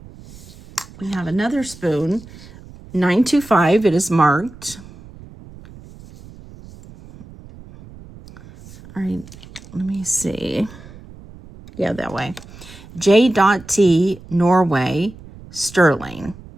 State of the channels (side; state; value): right; noise; rumble, 19 dB below the sound